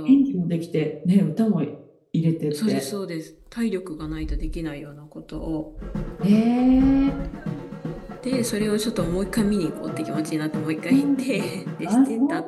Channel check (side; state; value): both; identical; correlation 1.00